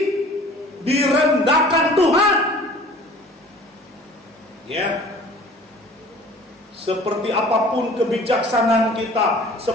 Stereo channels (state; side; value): normal; both; correlation 0.47